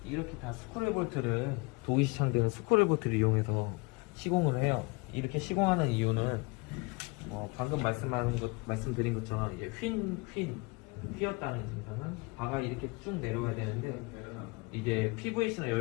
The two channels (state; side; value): quieter; right; 27.3 dB